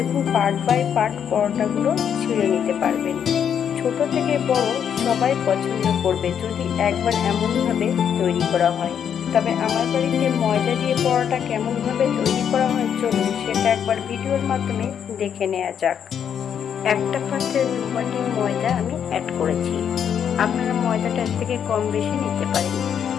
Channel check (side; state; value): right; quieter; 8.3 dB